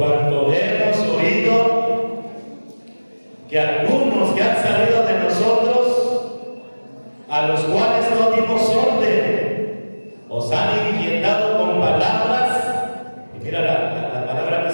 hemos oído que algunos que han salido de nosotros, a los cuales no dimos orden, os han inquietado con palabras. Y mira la palabra que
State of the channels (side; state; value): both; inverted; correlation -1.00